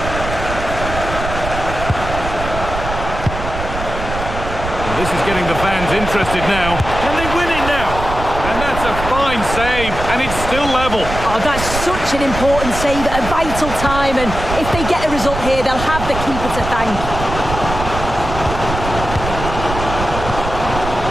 Well, this is getting the fans interested now. Can they win it now? And that's a fine save, and it's still level. Oh, that's such an important save at a vital time, and if they get a result here, they'll have the keeper to thank.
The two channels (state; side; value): noise; right; rumble, 7 dB below the sound